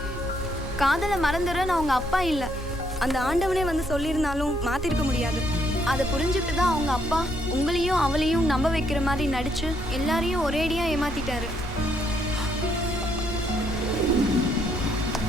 காதலை மறந்துடுறேன்னு அவங்க அப்பா இல்லை, அந்த ஆண்டவனே வந்து சொல்லியிருந்தாலும் மாத்திருக்க முடியாது. அதை புரிஞ்சுட்டு தான் அவங்க அப்பா உங்களையும் அவளையும் நம்ப வைக்கிற மாதிரி நடிச்சு எல்லாரையும் ஒரேடியா ஏமாத்திட்டாரு.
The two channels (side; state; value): both; normal; correlation 0.72